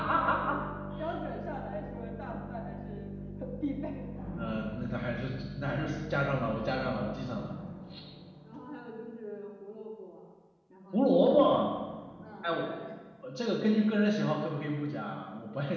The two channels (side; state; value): both; identical; correlation 1.00